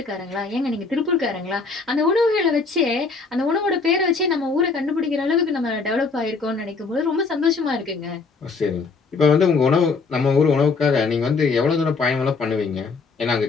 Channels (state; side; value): quieter; right; 4.4 dB